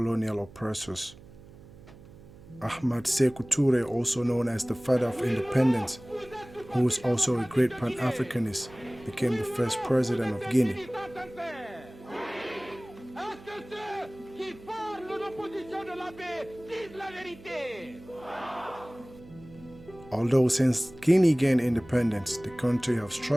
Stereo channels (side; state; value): right; noise; hum, 20 dB below the sound